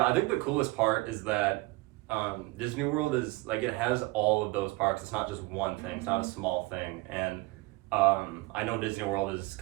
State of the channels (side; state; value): left; quieter; 22.3 dB